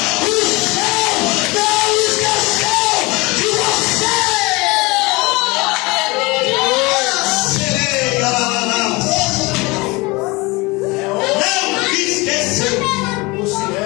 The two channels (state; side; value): quieter; right; 24.4 dB